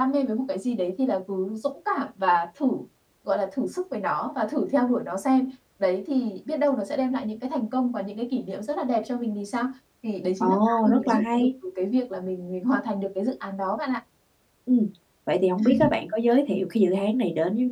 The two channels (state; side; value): identical; both; correlation 1.00